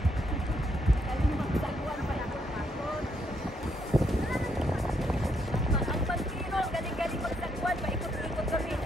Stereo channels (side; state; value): both; normal; correlation 0.75